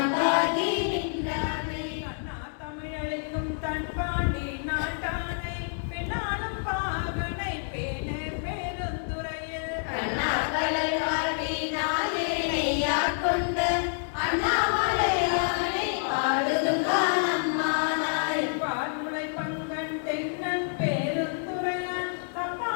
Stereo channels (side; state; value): right; silent; 59 dB below the other